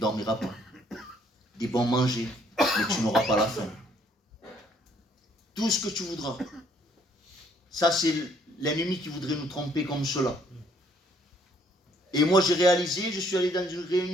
pas. Des bons manger, mais tu n'auras pas la faim. Tout ce que tu voudras. Ça, c'est l'ennemi qui voudrait nous tromper comme cela. Et moi, j'ai réalisé, je suis allé dans une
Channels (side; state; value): both; normal; correlation 0.65